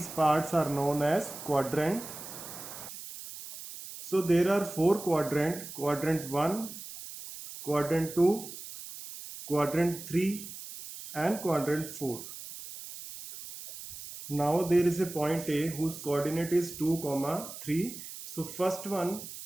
parts are known as quadrant. So there are four quadrant: quadrant 1, quadrant 2, quadrant 3 and quadrant 4. Now there is a point A whose coordinate is 2, 3. So first one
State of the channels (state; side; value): noise; right; hiss, 12 dB below the sound